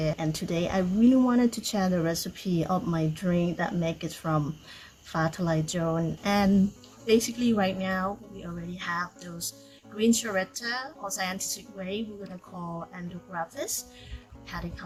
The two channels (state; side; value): identical; both; correlation 1.00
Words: and today I really wanted to share the recipe of my drink that make it from Fatalajon. And basically right now we already have those green charetta or scientific way we're gonna call endographis, paddy